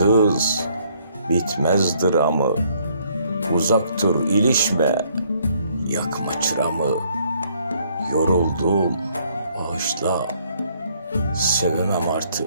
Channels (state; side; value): inverted; both; correlation -0.66